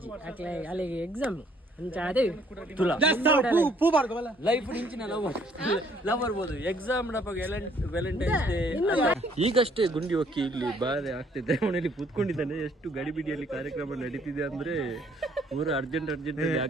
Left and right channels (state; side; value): normal; both; correlation 0.63